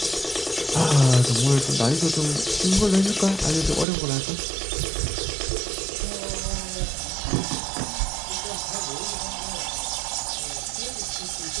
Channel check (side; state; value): left; drops out; at 3.9 s